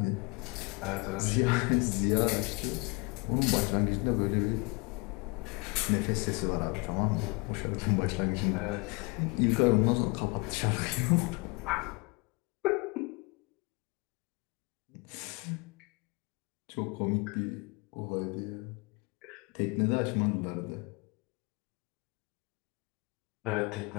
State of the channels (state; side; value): quieter; right; 29.2 dB